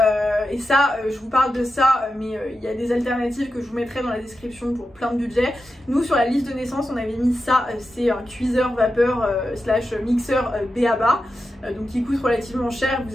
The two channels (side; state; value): both; normal; correlation 0.90